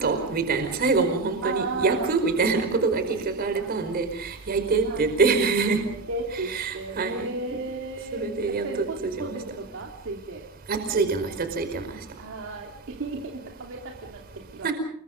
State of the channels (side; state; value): left; quieter; 3.7 dB